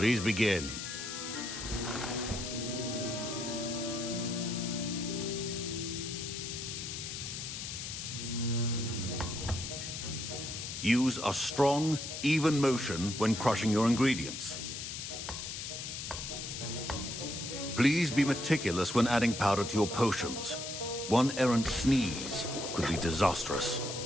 begin. Use a strong, even motion when crushing your ingredients. Please be meticulous when adding powder to your potions. One errant sneeze could be disastrous.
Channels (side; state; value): left; noise; hiss, 6 dB below the sound